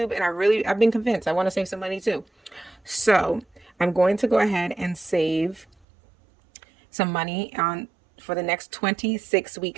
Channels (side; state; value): left; drops out; at 5.7 s